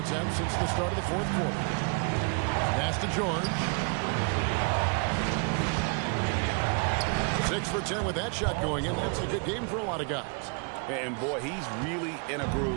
since the start of the 4th quarter. Pass to George. 6 for 10 with that shot going in. That's a good game for a lot of guys. And boy, he's really in a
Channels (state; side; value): quieter; left; 36.7 dB